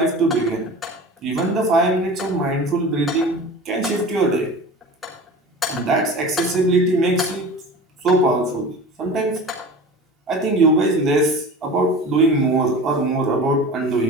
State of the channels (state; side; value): normal; both; correlation 0.36